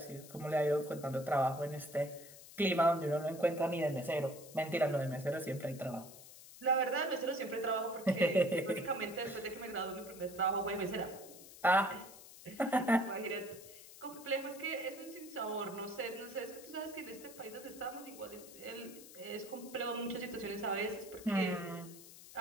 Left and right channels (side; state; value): left; noise; hiss, 17 dB below the sound